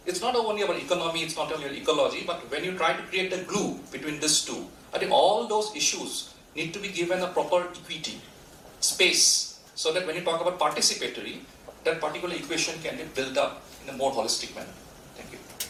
It's not only about economy, it's not only about ecology, but when you try to create the glue between these two, I think all those issues need to be given a proper equity, space, so that when you talk about participatory, that particular equation can be built up in a more holistic manner. Thank you.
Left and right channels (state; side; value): identical; both; correlation 1.00